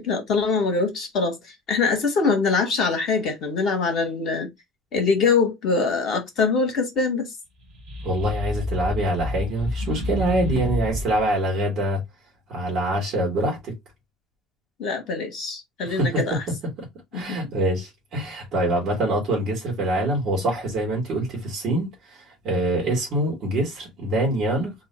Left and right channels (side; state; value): both; normal; correlation 0.39